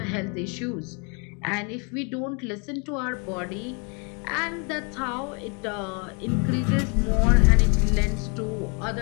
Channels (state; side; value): quieter; right; 34.5 dB